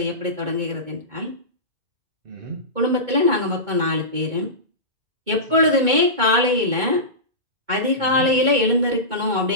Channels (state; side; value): late; left; 2.2 ms